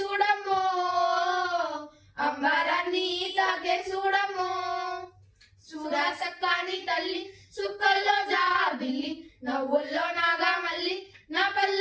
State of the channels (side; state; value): both; identical; correlation 1.00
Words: అంబరాన్ని తాకే చూడమ్మో చూడా సక్కాని తల్లి సుక్కల్లో జాబిల్లి నవ్వుల్లో నాగా మల్లి నా